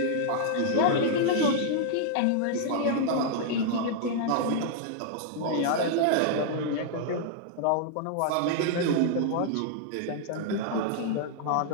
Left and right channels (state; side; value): different; both; correlation -0.01